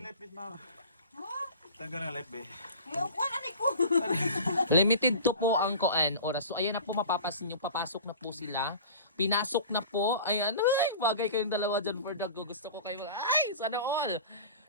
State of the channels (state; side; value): inverted; both; correlation -0.40